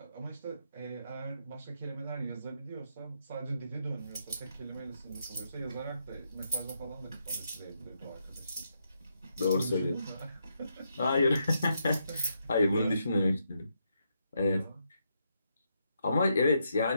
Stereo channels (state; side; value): inverted; both; correlation -0.80